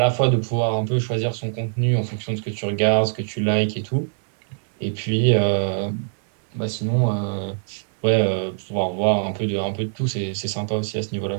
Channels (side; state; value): left; silent; digital silence